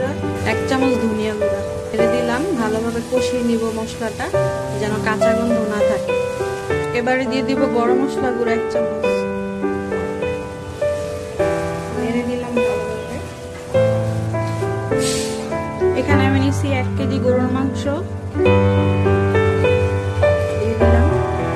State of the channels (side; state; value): both; identical; correlation 1.00